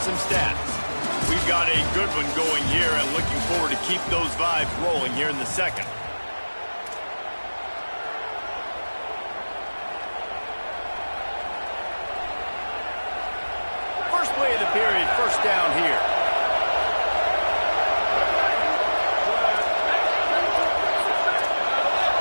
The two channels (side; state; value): both; inverted; correlation -1.00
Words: some stats. We've got a good one going here and looking forward to keep those vibes rolling here in the second. First play of the period, 1st down here.